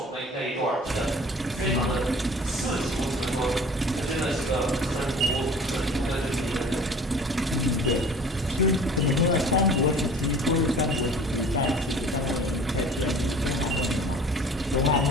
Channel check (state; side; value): normal; both; correlation 0.46